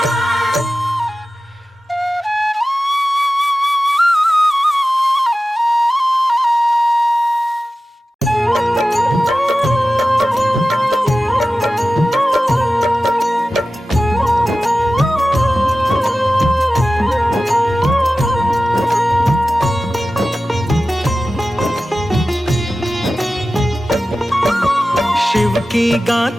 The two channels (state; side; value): normal; both; correlation 0.95